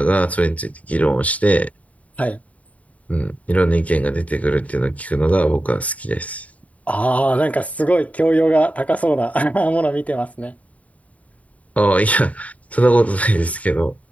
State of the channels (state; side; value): late; right; 0.069 ms